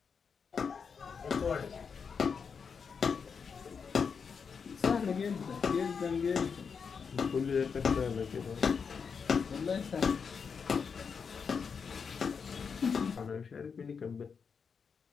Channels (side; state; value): right; quieter; 6.0 dB